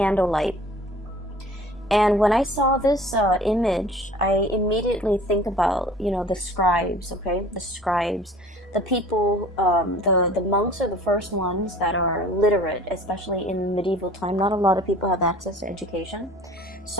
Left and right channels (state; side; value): normal; both; correlation 0.47